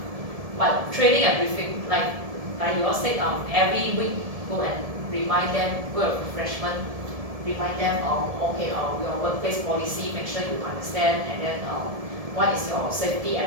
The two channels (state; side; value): late; left; 1.7 ms